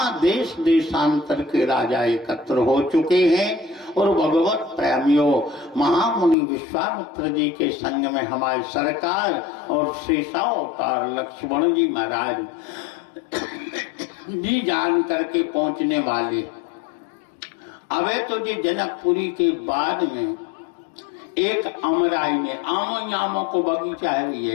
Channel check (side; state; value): right; drops out; at 6.4 s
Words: देश देशांतर के राजा एकत्र हो चुके हैं और भगवत प्रेमियों महामुनि विश्वामित्र जी के संग में हमारी सरकार और शेषावतार लक्ष्मण जी महाराज जी जान करके पहुंचने वाले। अबे तो जी जनकपुरी के बाद में एक अमराई में आमों को बगीचा है